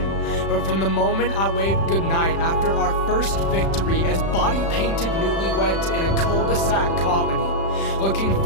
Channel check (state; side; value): late; right; 36 ms